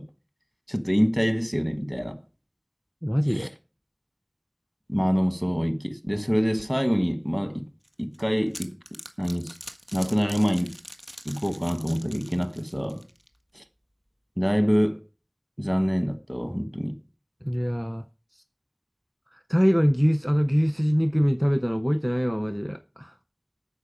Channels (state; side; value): identical; both; correlation 1.00